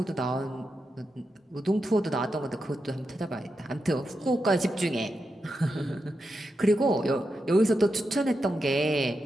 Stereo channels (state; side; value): normal; both; correlation 0.87